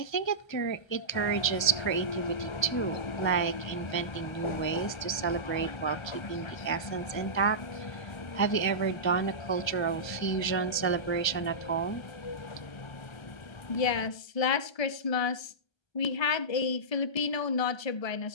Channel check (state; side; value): late; right; 1.3 ms